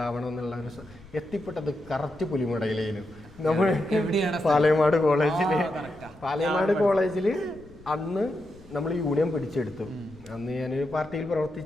എന്നുള്ള ഒരു എത്തിപ്പെട്ടത് കറക്റ്റ് പുലിമുടയിലേനും. നമ്മൾ പാലയമാട് കോളേജിൽ അന്ന് നമ്മൾ യൂണിയൻ പിടിച്ചെടുത്തു. അന്ന് ഞാനൊരു പാർട്ടിയിൽ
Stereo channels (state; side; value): noise; left; rumble, 22 dB below the sound